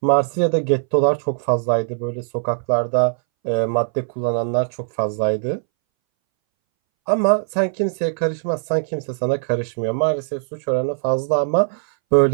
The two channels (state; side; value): silent; left; 63 dB below the other